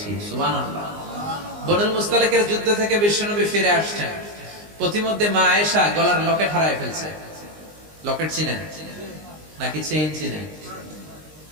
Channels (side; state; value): left; late; 19 ms